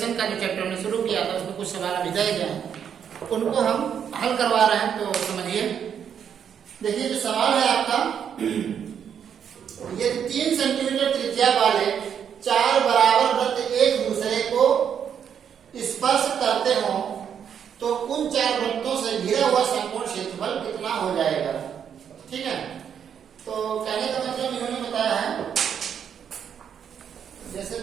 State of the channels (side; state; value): left; quieter; 8.2 dB